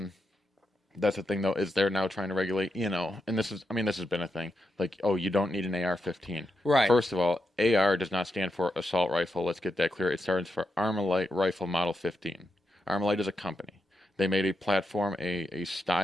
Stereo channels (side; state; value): both; normal; correlation 0.86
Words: That's the thing, though, is they're now trying to regulate, and this has been a thing. Like, you don't need an AR-15. Right. First of all, AR does not stand for assault rifle. Let's get that clear. It stands for Armalite Rifle Model 15. Armalite is a company. They made a platform, a